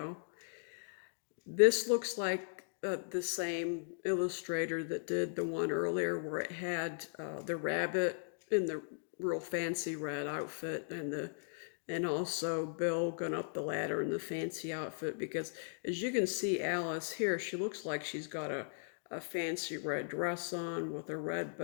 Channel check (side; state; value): right; silent; digital silence